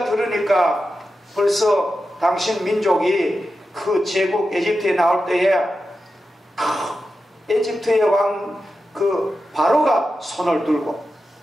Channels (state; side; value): normal; both; correlation 0.91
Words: 들으니까 벌써 당신 민족이 그 제국 에집트에 나올 때에 에집트의 왕 그 바로가 손을 들고